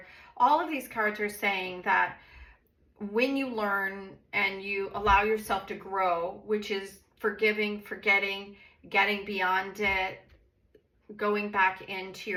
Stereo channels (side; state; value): both; identical; correlation 1.00